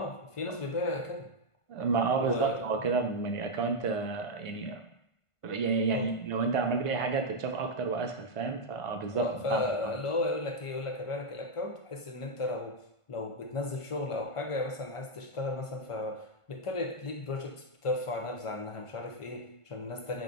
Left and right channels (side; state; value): right; late; 1.5 ms